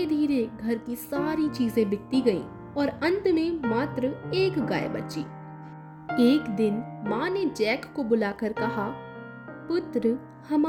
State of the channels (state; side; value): identical; both; correlation 1.00